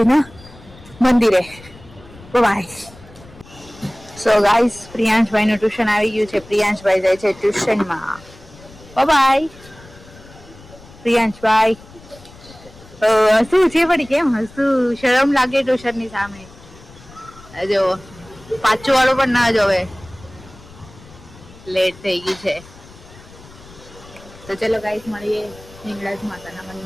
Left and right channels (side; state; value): left; noise; rumble, 21 dB below the sound